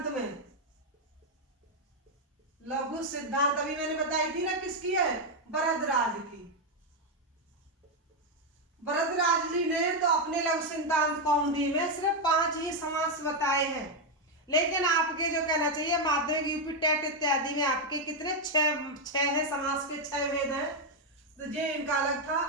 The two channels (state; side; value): normal; both; correlation 0.03